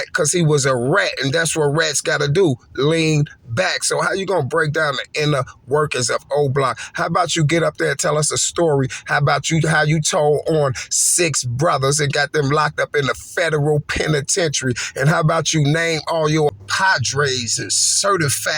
because he was a rat, and that's what rats gotta do, lean back. So how you gonna break down the inner workings of O Block? How about you get up there and tell us a story? How about how you told on 6 brothers and got them locked up in the federal penitentiary? And how about you name all your padres and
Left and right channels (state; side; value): identical; both; correlation 1.00